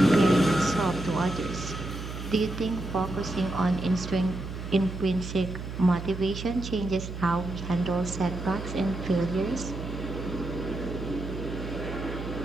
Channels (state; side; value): noise; right; hum, 8 dB below the sound